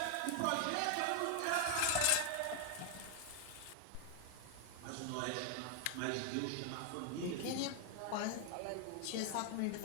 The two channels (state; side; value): different; both; correlation 0.00